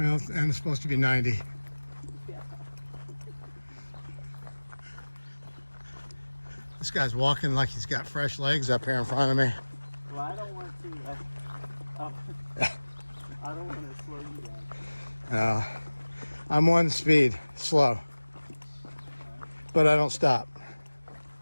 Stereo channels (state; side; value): inverted; both; correlation -1.00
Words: and it's supposed to be 90. Yeah. This guy's walking like he's got fresh legs up here in front of me. Well, I don't want to. I don't want to slow you down. I'm one speed, slow, but I don't stop.